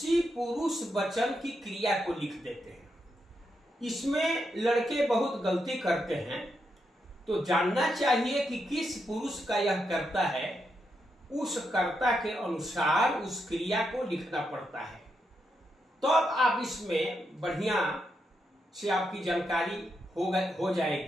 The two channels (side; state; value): both; normal; correlation 0.83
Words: पुरुष वचन की क्रिया को लिख देते हैं। इसमें लड़के बहुत गलती करते हैं, तो जानना चाहिए कि किस पुरुष का यह कर्ता है, उस कर्ता के अनुसार उस क्रिया को लिखना पड़ता है। तो अब आप इसमें बढ़िया से आपकी जानकारी हो